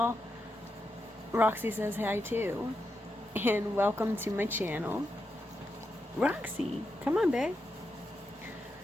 Roxy says hi too, and welcome to my channel. Roxy, come on, babe.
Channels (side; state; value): both; normal; correlation 0.85